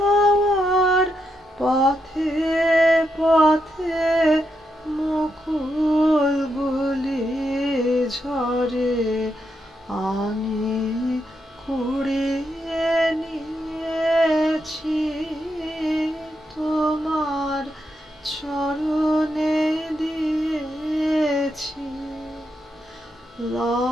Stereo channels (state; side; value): normal; both; correlation 0.82